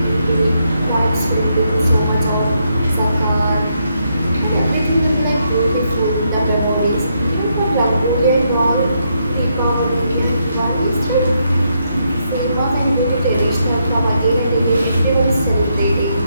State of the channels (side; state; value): both; inverted; correlation -0.78